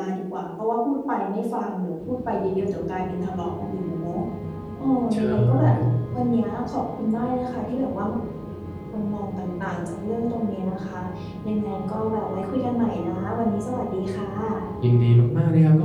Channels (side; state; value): both; identical; correlation 1.00